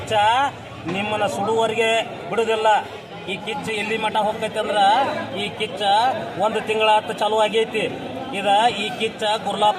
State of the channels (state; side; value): identical; both; correlation 1.00